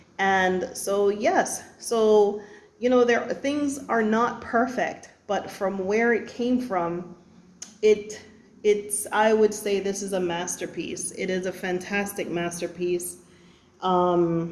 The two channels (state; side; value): identical; both; correlation 1.00